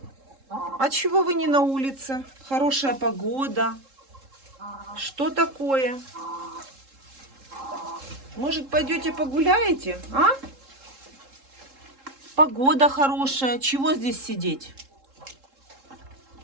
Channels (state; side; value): late; left; 3.7 ms